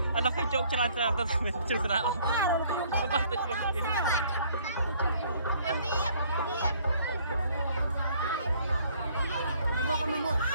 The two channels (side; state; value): both; inverted; correlation -0.60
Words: Anak kecil celan-celan tapi cerita oh. Lepas tu celan. Diam.